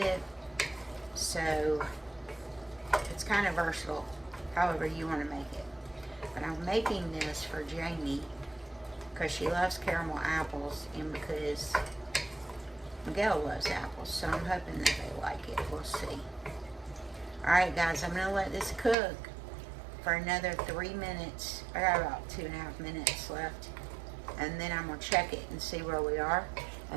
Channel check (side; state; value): left; drops out; at 18.9 s